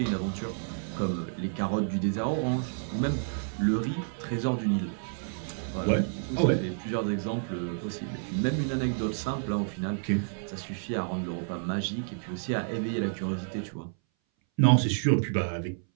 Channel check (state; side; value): silent; left; 58 dB below the other